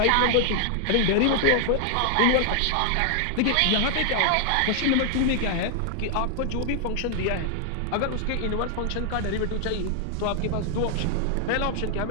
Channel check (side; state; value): both; different; correlation 0.00